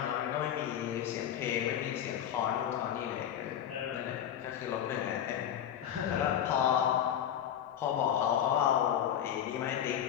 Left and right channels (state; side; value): quieter; right; 10.0 dB